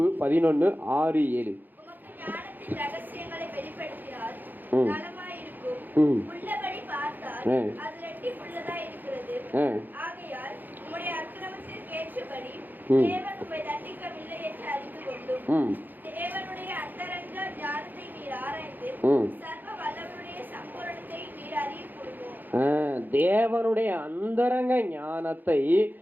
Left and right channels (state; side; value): late; left; 0.087 ms